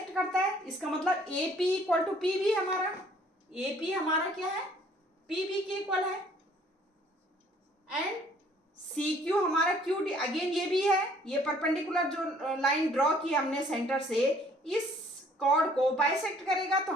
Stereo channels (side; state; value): both; normal; correlation 0.59